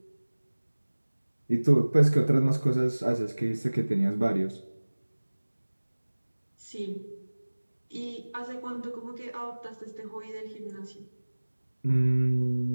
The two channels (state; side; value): inverted; both; correlation -1.00